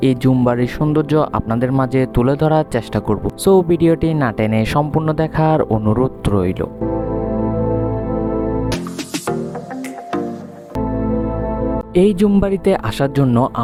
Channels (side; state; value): both; identical; correlation 1.00